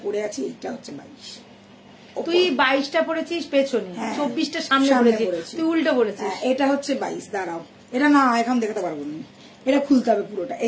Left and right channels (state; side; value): identical; both; correlation 1.00